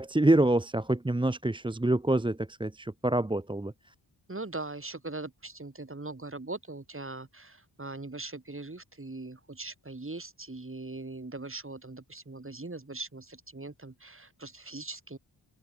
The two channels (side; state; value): both; normal; correlation 0.77